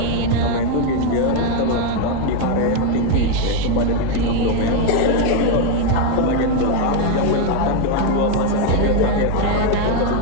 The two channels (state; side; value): different; both; correlation 0.01